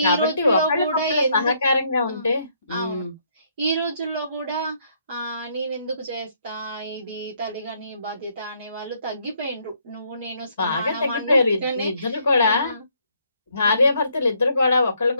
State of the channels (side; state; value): both; inverted; correlation -0.70